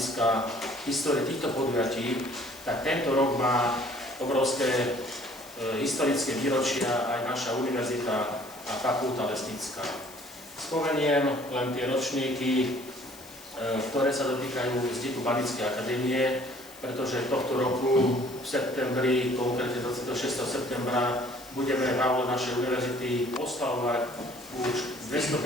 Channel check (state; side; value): noise; left; hiss, 20 dB below the sound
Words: histórie týchto podujatí, tak tento rok má obrovské historické výročia aj naša univerzita a fakulta lesnícka. Spomeniem len tie ročníky, ktoré sa dotýkajú vzniku Banickej akadémie, pretože tohto roku v septembri, konkrétne 26. septembra, budeme v aule našej univerzity oslavovať už